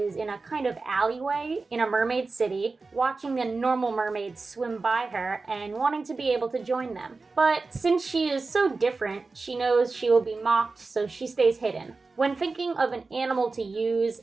in a kind of alleyway in a mermaid city, watching the normal mermaids swim by her and wanting to be able to join them. But since she is so different, she knows she will be mocked, so she stays hidden. When thinking of an animal to use,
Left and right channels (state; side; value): quieter; left; 3.9 dB